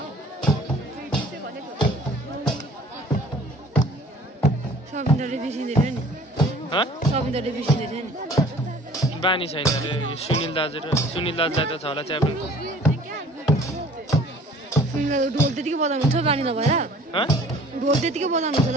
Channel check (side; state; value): both; normal; correlation 0.51